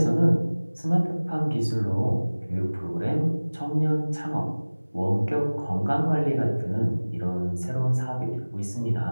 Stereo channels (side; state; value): both; inverted; correlation -1.00